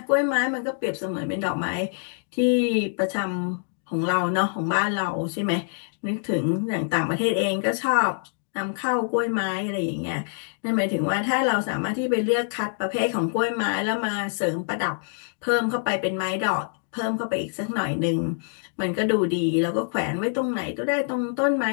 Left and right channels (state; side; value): silent; right; digital silence